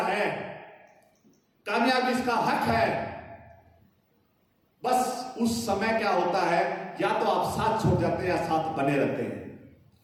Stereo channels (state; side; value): identical; both; correlation 1.00